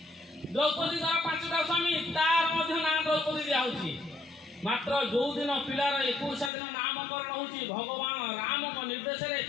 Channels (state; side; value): drops out; right; at 6.5 s